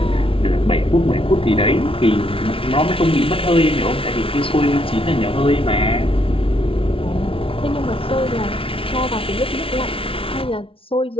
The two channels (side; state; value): right; late; 0.26 ms